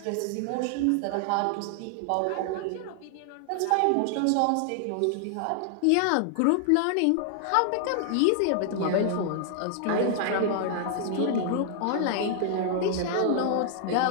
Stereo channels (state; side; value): different; both; correlation 0.00